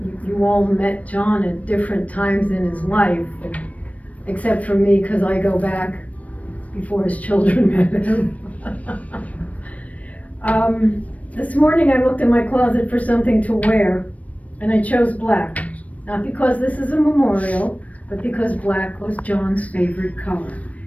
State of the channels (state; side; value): late; right; 0.068 ms